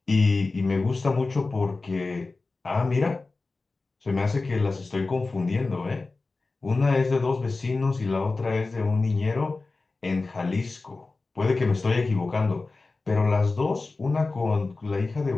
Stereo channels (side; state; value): right; quieter; 3.6 dB